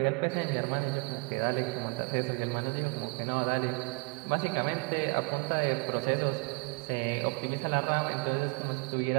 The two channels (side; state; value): left; quieter; 33.5 dB